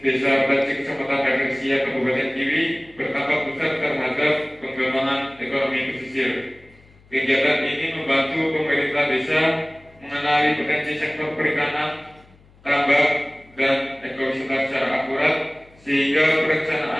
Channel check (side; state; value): left; noise; hum, 28 dB below the sound